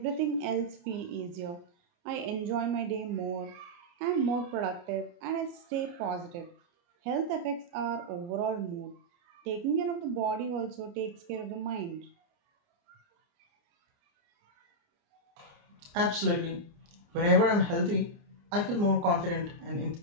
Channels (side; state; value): left; late; 29 ms